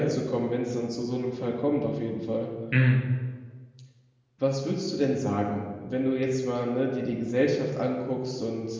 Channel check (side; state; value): both; identical; correlation 1.00